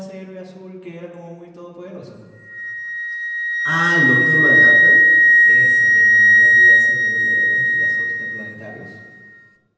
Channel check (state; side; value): identical; both; correlation 1.00